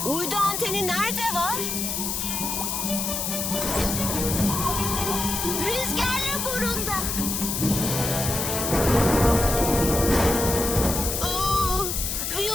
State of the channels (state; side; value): noise; left; hiss, 2 dB below the sound